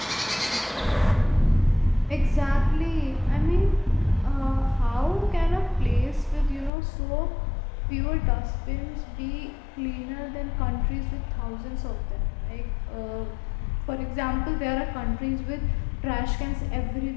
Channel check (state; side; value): drops out; right; at 6.7 s